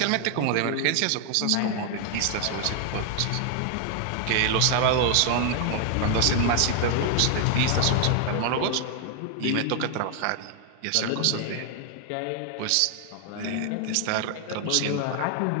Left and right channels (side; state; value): both; different; correlation 0.00